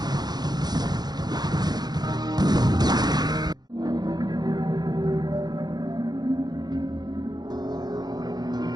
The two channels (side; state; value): left; late; 0.20 ms